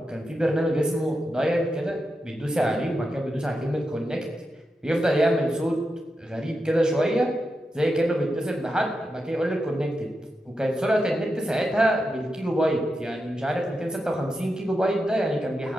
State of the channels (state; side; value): normal; both; correlation 0.88